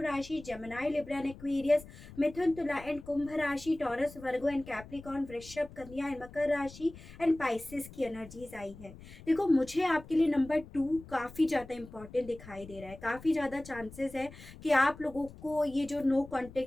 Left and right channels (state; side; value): noise; left; rumble, 17 dB below the sound